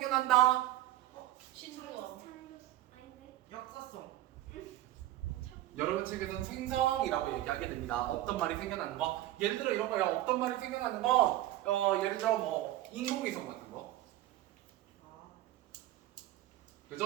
신조어. 역사성. 여러분 책에서는 생성이라고 얘기하게 됩니다. 없던 말이 생겨나는 거. 예를 들어 이런 거예요. 없던 말이 생겨나는 건 예를 들어 뭐 인공위성 같은 거.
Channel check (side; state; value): left; quieter; 14.9 dB